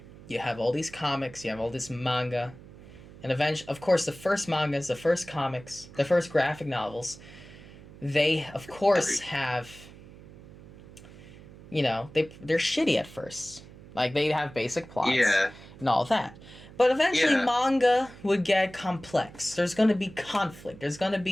you have all these comics, you have all this manga, and eventually, of course, the first mangas, the first comics, the first graphic novels, they of course have, they're shitty at first. Like, they have basic plots, Yeah. and all that. But eventually, Yeah. manga would get complex. There's going to be conflict. There's going to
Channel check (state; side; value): noise; right; hum, 19 dB below the sound